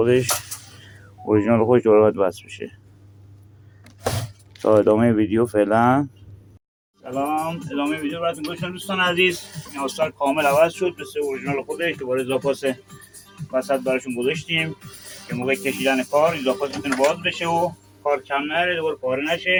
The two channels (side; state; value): both; identical; correlation 1.00